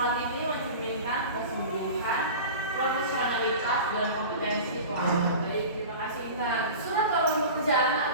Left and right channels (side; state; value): both; inverted; correlation -0.35